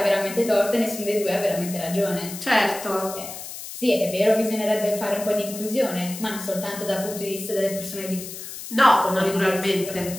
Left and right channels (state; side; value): noise; left; hiss, 11 dB below the sound